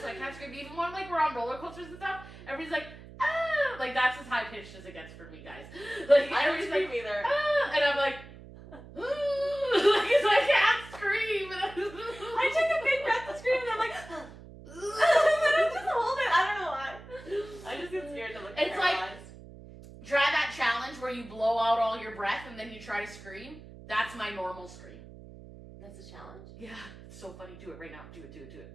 so I can't scream. Even when like we're on roller coasters and stuff, everybody's like, ah! Like that's as high pitched as it gets for me, guys. Like I don't scream like, either. Ah! And I'm like, because I can't scream. I took a big breath to scream, and I'm like, and I just hold it. I don't know why. I just get scared to look. It's like try that challenge where you blow out all your breath and then you try to scream. That's my normal scream. That's a challenge? Yeah. It's so funny. Do it right now. Do it.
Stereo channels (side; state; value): right; noise; hum, 17 dB below the sound